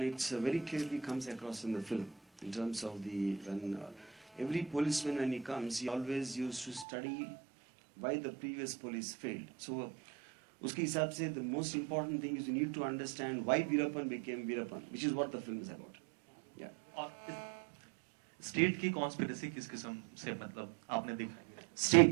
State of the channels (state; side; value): drops out; left; at 6.9 s